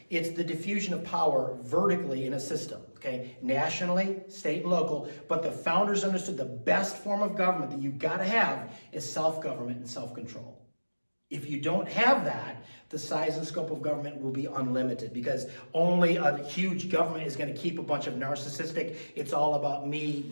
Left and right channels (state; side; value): inverted; both; correlation -1.00